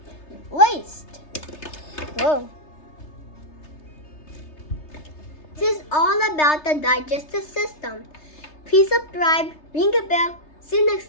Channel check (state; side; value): late; right; 3.3 ms